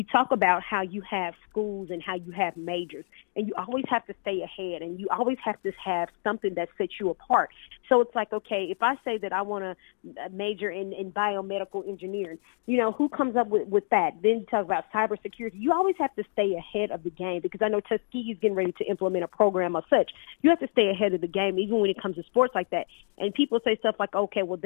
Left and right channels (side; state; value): right; silent; digital silence